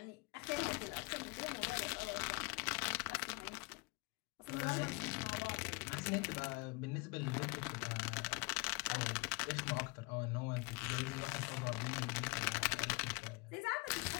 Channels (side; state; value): right; quieter; 28.0 dB